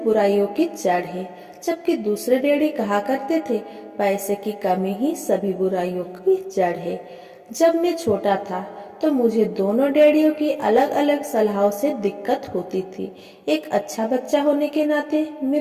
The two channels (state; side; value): identical; both; correlation 1.00